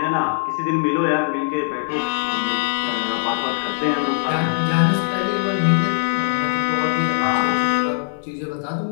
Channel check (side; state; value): right; silent; 65 dB below the other